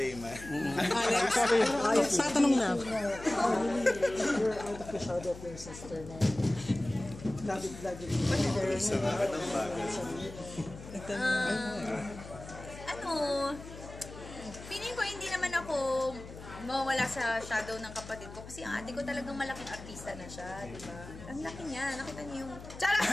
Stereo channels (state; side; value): noise; left; hum, 14 dB below the sound